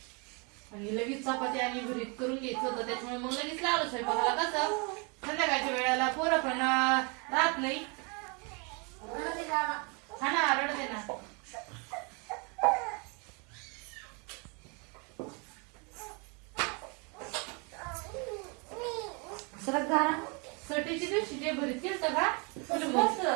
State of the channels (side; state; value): left; quieter; 32.7 dB